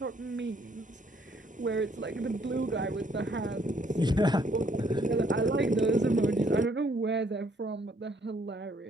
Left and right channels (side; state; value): both; normal; correlation 0.66